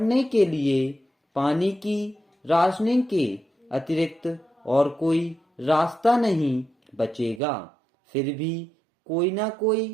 के लिए पानी की राशनिंग के अतिरिक्त और कोई रास्ता नहीं बचेगा। फिर भी कोई ना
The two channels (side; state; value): left; drops out; at 7.4 s